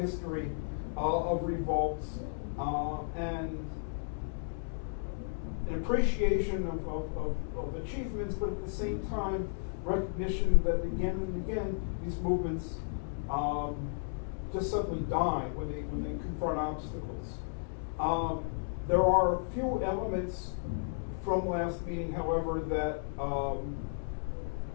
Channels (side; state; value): right; silent; digital silence